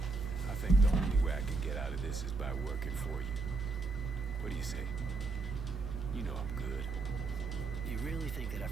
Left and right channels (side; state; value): left; quieter; 3.8 dB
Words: I think the only way I can get out of this is by working for you. What do you say? You know I'm good. You really think that